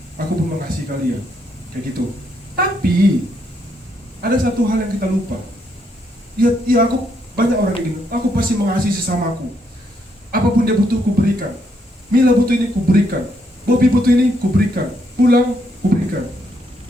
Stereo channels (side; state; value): both; normal; correlation 0.75